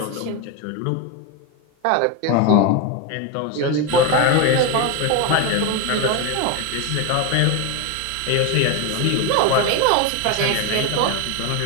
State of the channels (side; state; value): both; different; correlation 0.02